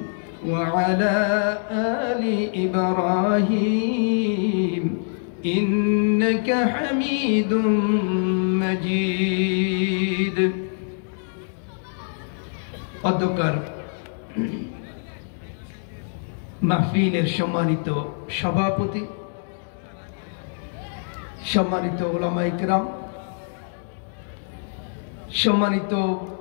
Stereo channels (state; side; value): silent; right; digital silence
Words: وعلى آل إبراهيم إنك حميد مجيد অধ্যকার মাহফিলের সম্মানিত সভাপতি, সম্মানিত উলামায়ে কেরাম, সম্মানিত